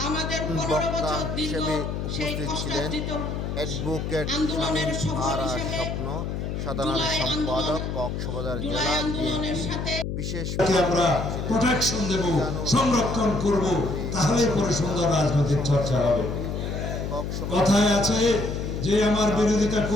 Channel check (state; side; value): noise; left; hum, 3 dB below the sound